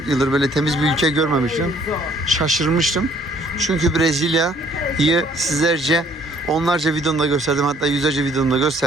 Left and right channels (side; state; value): both; normal; correlation 0.61